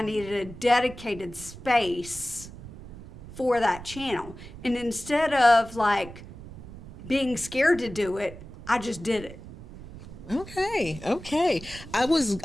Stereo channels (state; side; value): noise; right; rumble, 15 dB below the sound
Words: needed a dedicated space for that channel. And instead of like being scared to do it, I just did it. Okay. I